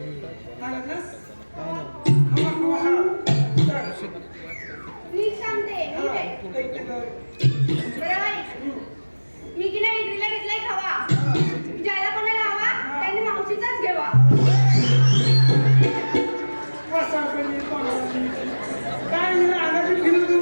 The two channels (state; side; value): inverted; both; correlation -1.00